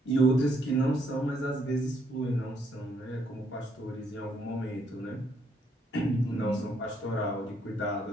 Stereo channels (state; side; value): normal; both; correlation 0.72